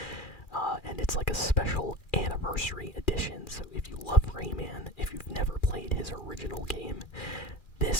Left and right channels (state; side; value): late; right; 2.4 ms